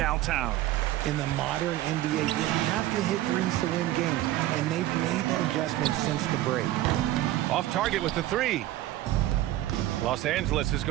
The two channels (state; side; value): quieter; left; 14.9 dB